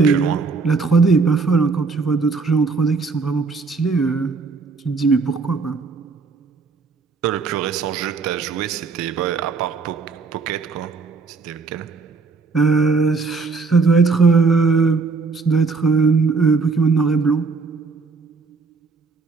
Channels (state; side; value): quieter; left; 4.5 dB